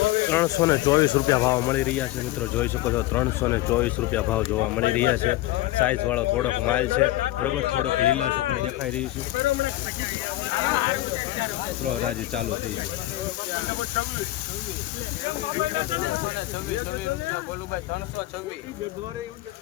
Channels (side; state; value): right; quieter; 16.6 dB